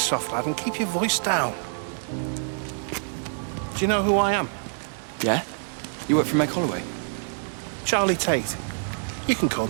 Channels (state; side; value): silent; left; digital silence